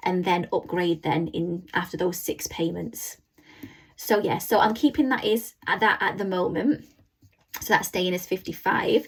and then upgrade then in after those 6 payments. So yeah, so I'm keeping that at the moment. So that's staying as 55.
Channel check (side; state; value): both; identical; correlation 1.00